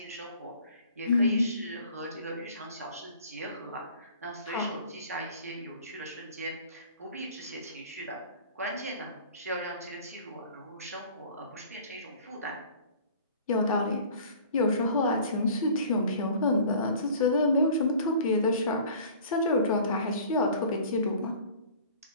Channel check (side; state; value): both; inverted; correlation -0.47